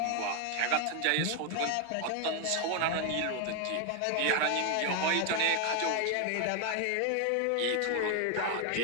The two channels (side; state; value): both; different; correlation 0.01